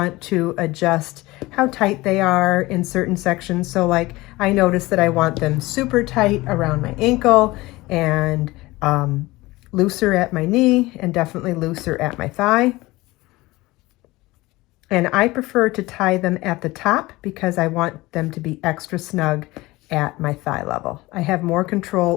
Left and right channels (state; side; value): quieter; right; 20.1 dB